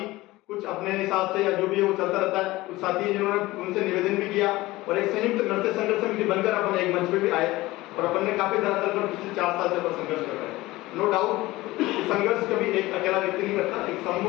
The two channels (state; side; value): quieter; right; 18.9 dB